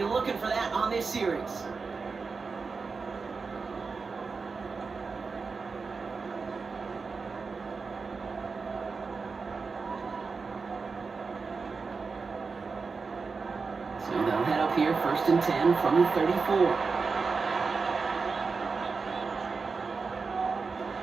looking for that on this series. So they'll head up here 1st and 10 from the 34.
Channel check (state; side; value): quieter; left; 4.7 dB